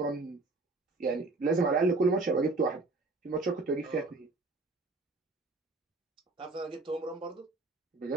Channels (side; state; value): left; quieter; 3.3 dB